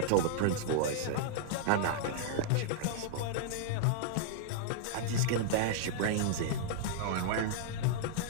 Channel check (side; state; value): both; different; correlation -0.01